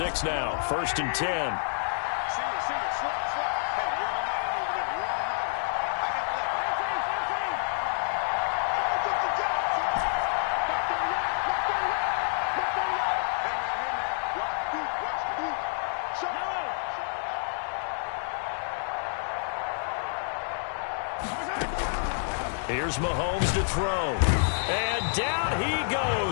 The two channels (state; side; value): silent; right; digital silence